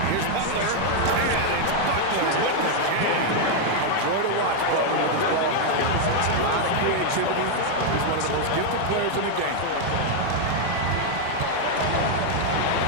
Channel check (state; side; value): different; both; correlation 0.00